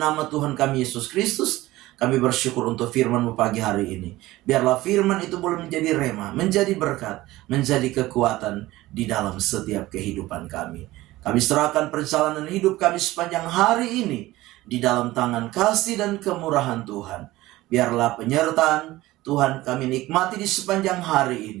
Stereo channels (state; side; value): quieter; left; 17.6 dB